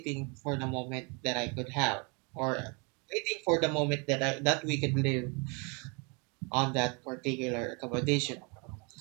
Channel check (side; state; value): left; quieter; 32.4 dB